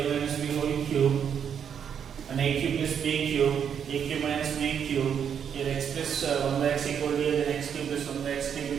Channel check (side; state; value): left; quieter; 8.0 dB